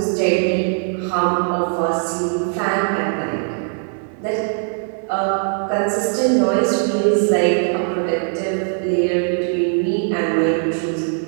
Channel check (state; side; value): silent; left; 58 dB below the other